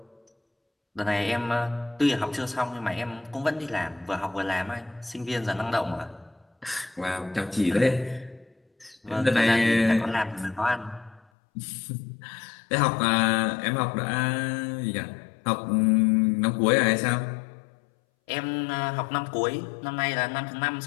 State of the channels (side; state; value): right; drops out; at 11.2 s